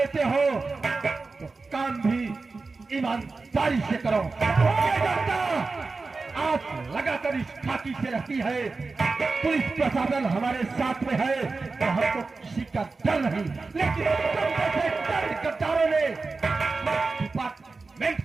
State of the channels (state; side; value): quieter; left; 4.0 dB